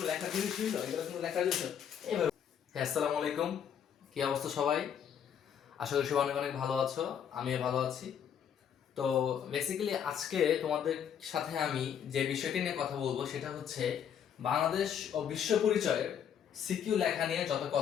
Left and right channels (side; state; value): right; quieter; 8.5 dB